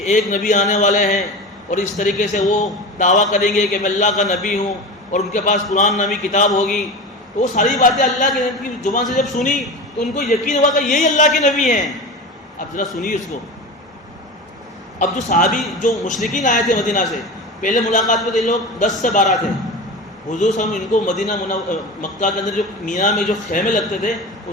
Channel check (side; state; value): both; normal; correlation 0.28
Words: ایک نبی آنے والے ہیں اور اس طریقے سے وہ دعویٰ کریں گے کہ میں اللہ کا نبی ہوں اور ان کے پاس قرآن نامی کتاب ہوگی۔ تو وہ ساری باتیں اللہ کے نبی کی زبان سے جب سنی تو ان کو یقین ہوا کہ یہی اللہ کے نبی ہیں۔ اب ذرا سنیے اس کو۔ اب جو صحابی جو مشرکین آئے تھے مدینہ سے، پہلے ملاقات میں تھے لوگ 10 سے 12 تھے، حضور صلی اللہ علیہ وسلم ان کو مکہ کے اندر جو مینا میں جو خیمے لگتے تھے